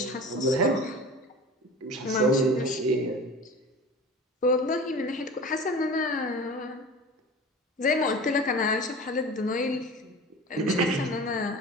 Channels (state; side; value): normal; both; correlation 0.36